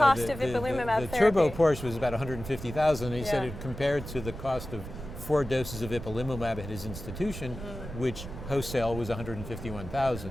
of ipilimumab therapy. The turbo Porsche was about $150,000, and he said it compared to the cost of 4 doses of ipilimumab at his institution, which wholesale was $151,000.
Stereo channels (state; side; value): noise; right; rumble, 10 dB below the sound